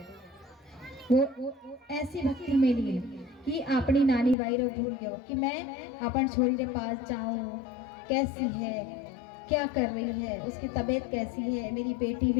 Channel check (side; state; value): right; drops out; at 4.4 s